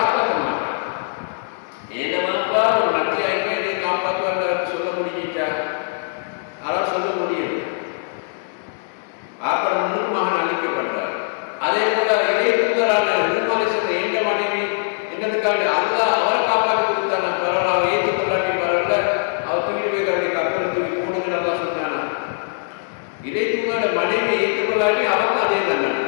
மாட்டார். ஏண்டமாப்பா ஒரு நன்றியாயிரம் இதை காப்பாற்றுவார் சொல்ல முடிஞ்சிட்டா அவர் சொல்ல முடியும். ஆப்பட முன்னுக்கு மகன் அழிக்கப்படுறார். அதே போல இறை தூதரான நூஹ் எந்த மனைவி என்னதுக்காக அல்லாஹ் அவரை காப்பாற்றி கொடுத்தானா பரவாயில்ல, அவரை ஏற்றுக்கொள்ளாட்டி பரவாயில்ல, அவர் தூக்கிட்டு போய் தன்னுடைய கப்பல் தூக்கி போடுன்னு நல்லா சொன்னானா. இறை தூதரோட மனைவி ஏற்றுக்கொள்ளாட்டி அவருக்கு அதே தண்டனை.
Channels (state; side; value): silent; right; digital silence